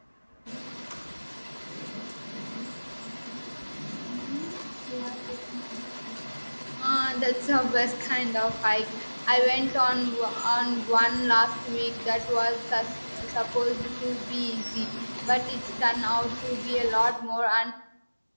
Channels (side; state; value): both; inverted; correlation -1.00